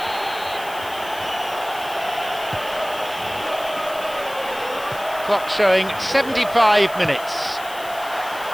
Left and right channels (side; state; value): left; noise; hiss, 16 dB below the sound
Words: Clock showing 75 minutes.